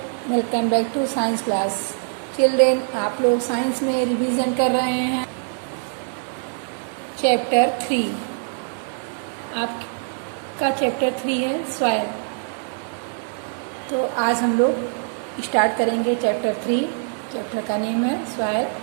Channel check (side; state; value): left; silent; 62 dB below the other